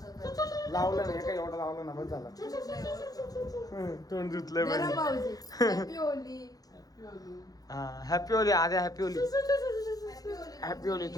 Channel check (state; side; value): late; right; 0.18 ms